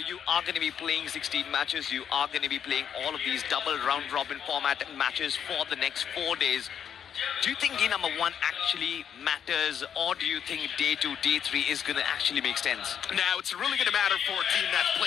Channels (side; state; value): right; quieter; 8.5 dB